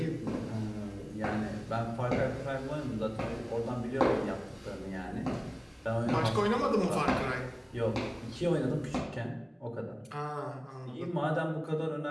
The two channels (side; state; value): both; identical; correlation 1.00